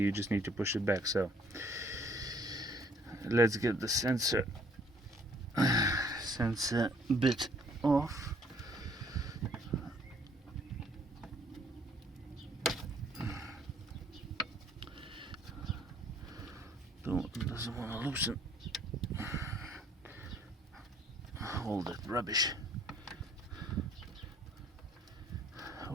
just need to push it back. So let's get the sensor bit off. Doesn't want to loosen all that rubbish.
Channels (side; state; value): both; normal; correlation 0.61